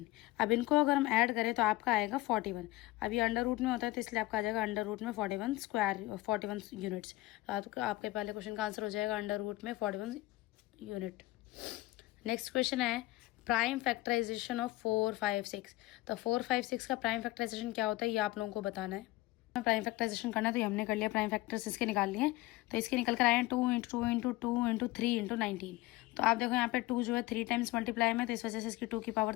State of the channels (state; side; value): quieter; right; 18.7 dB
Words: अब इनको अगर हम ऐड करें तो आपका आएगा 41। अब ये अंडर रूट में होता है तो इसलिए आपका आ जाएगा अंडर रूट में 41 स्क्वायर 41 यूनिट्स। तो आपके पहले क्वेश्चन का आंसर हो जाएगा अंडर रूट में 41 यूनिट। नेक्स्ट क्वेश्चन है प्राइम फैक्टराइजेशन ऑफ 4, 5, 6। तो 4, 5, 6 का प्राइम फैक्टराइजेशन क्या होता है ये आप लोगों को बताना है। प्राइम फैक्टराइजेशन करना है तो ये हमने कर लिया, प्राइम फैक्टर्स इसके निकाल लिए। तो इसके निकल कर आए हैं 2 × 2 × 2 × 3 × 19। तो आप देखो यहाँ पे 2 जो है 3 टाइम्स मल्टीप्लाई में, तो इस वजह से इसकी 2 की पावर